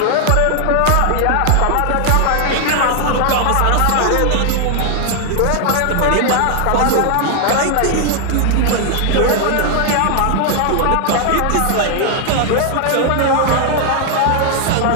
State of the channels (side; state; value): both; different; correlation 0.00